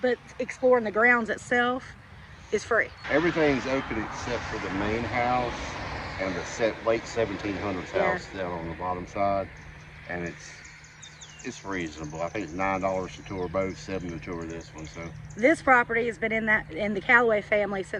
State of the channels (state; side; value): identical; both; correlation 1.00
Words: exploring the grounds itself is free. Everything's open except for the main house and the late 1700s house down on the bottom side, and it's reasonable. I think it's $9 to tour both, $7 to tour this one. So this property has been in the Callaway family